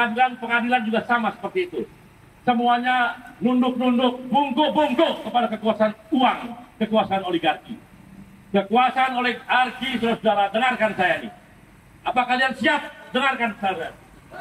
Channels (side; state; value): both; identical; correlation 1.00